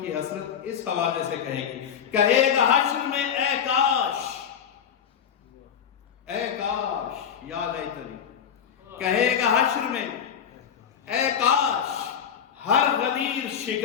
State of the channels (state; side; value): quieter; right; 8.1 dB